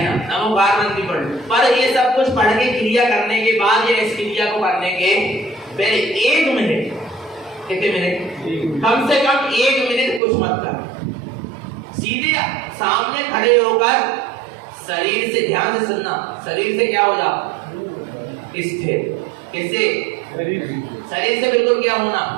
नमोकार मंत्र भी पढ़। पर ये सब कुछ पढ़ के क्रिया करने के बाद या इस क्रिया को करने के पहले 1 मिनट, कितने मिनट, कम से कम 1 मिनट कुछ मत कर, सीधे सामने खड़े होकर शरीर से, ध्यान से सुनना, शरीर से क्या हो जाओ, स्थिर। किससे, शरीर से बिल्कुल क्या होना,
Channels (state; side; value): drops out; left; at 10.2 s